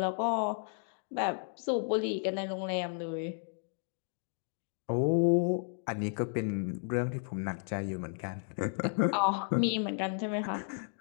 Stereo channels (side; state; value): right; silent; 56 dB below the other